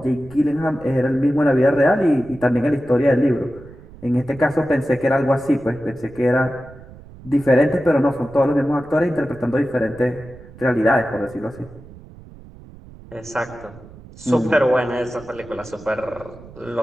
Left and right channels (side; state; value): right; noise; rumble, 20 dB below the sound